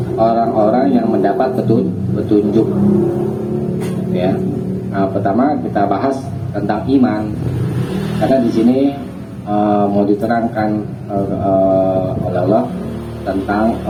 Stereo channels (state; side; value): identical; both; correlation 1.00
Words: orang-orang yang mendapat petunjuk ya. Nah, pertama kita bahas tentang iman, karena di sini mau diterangkan oleh Allah tentang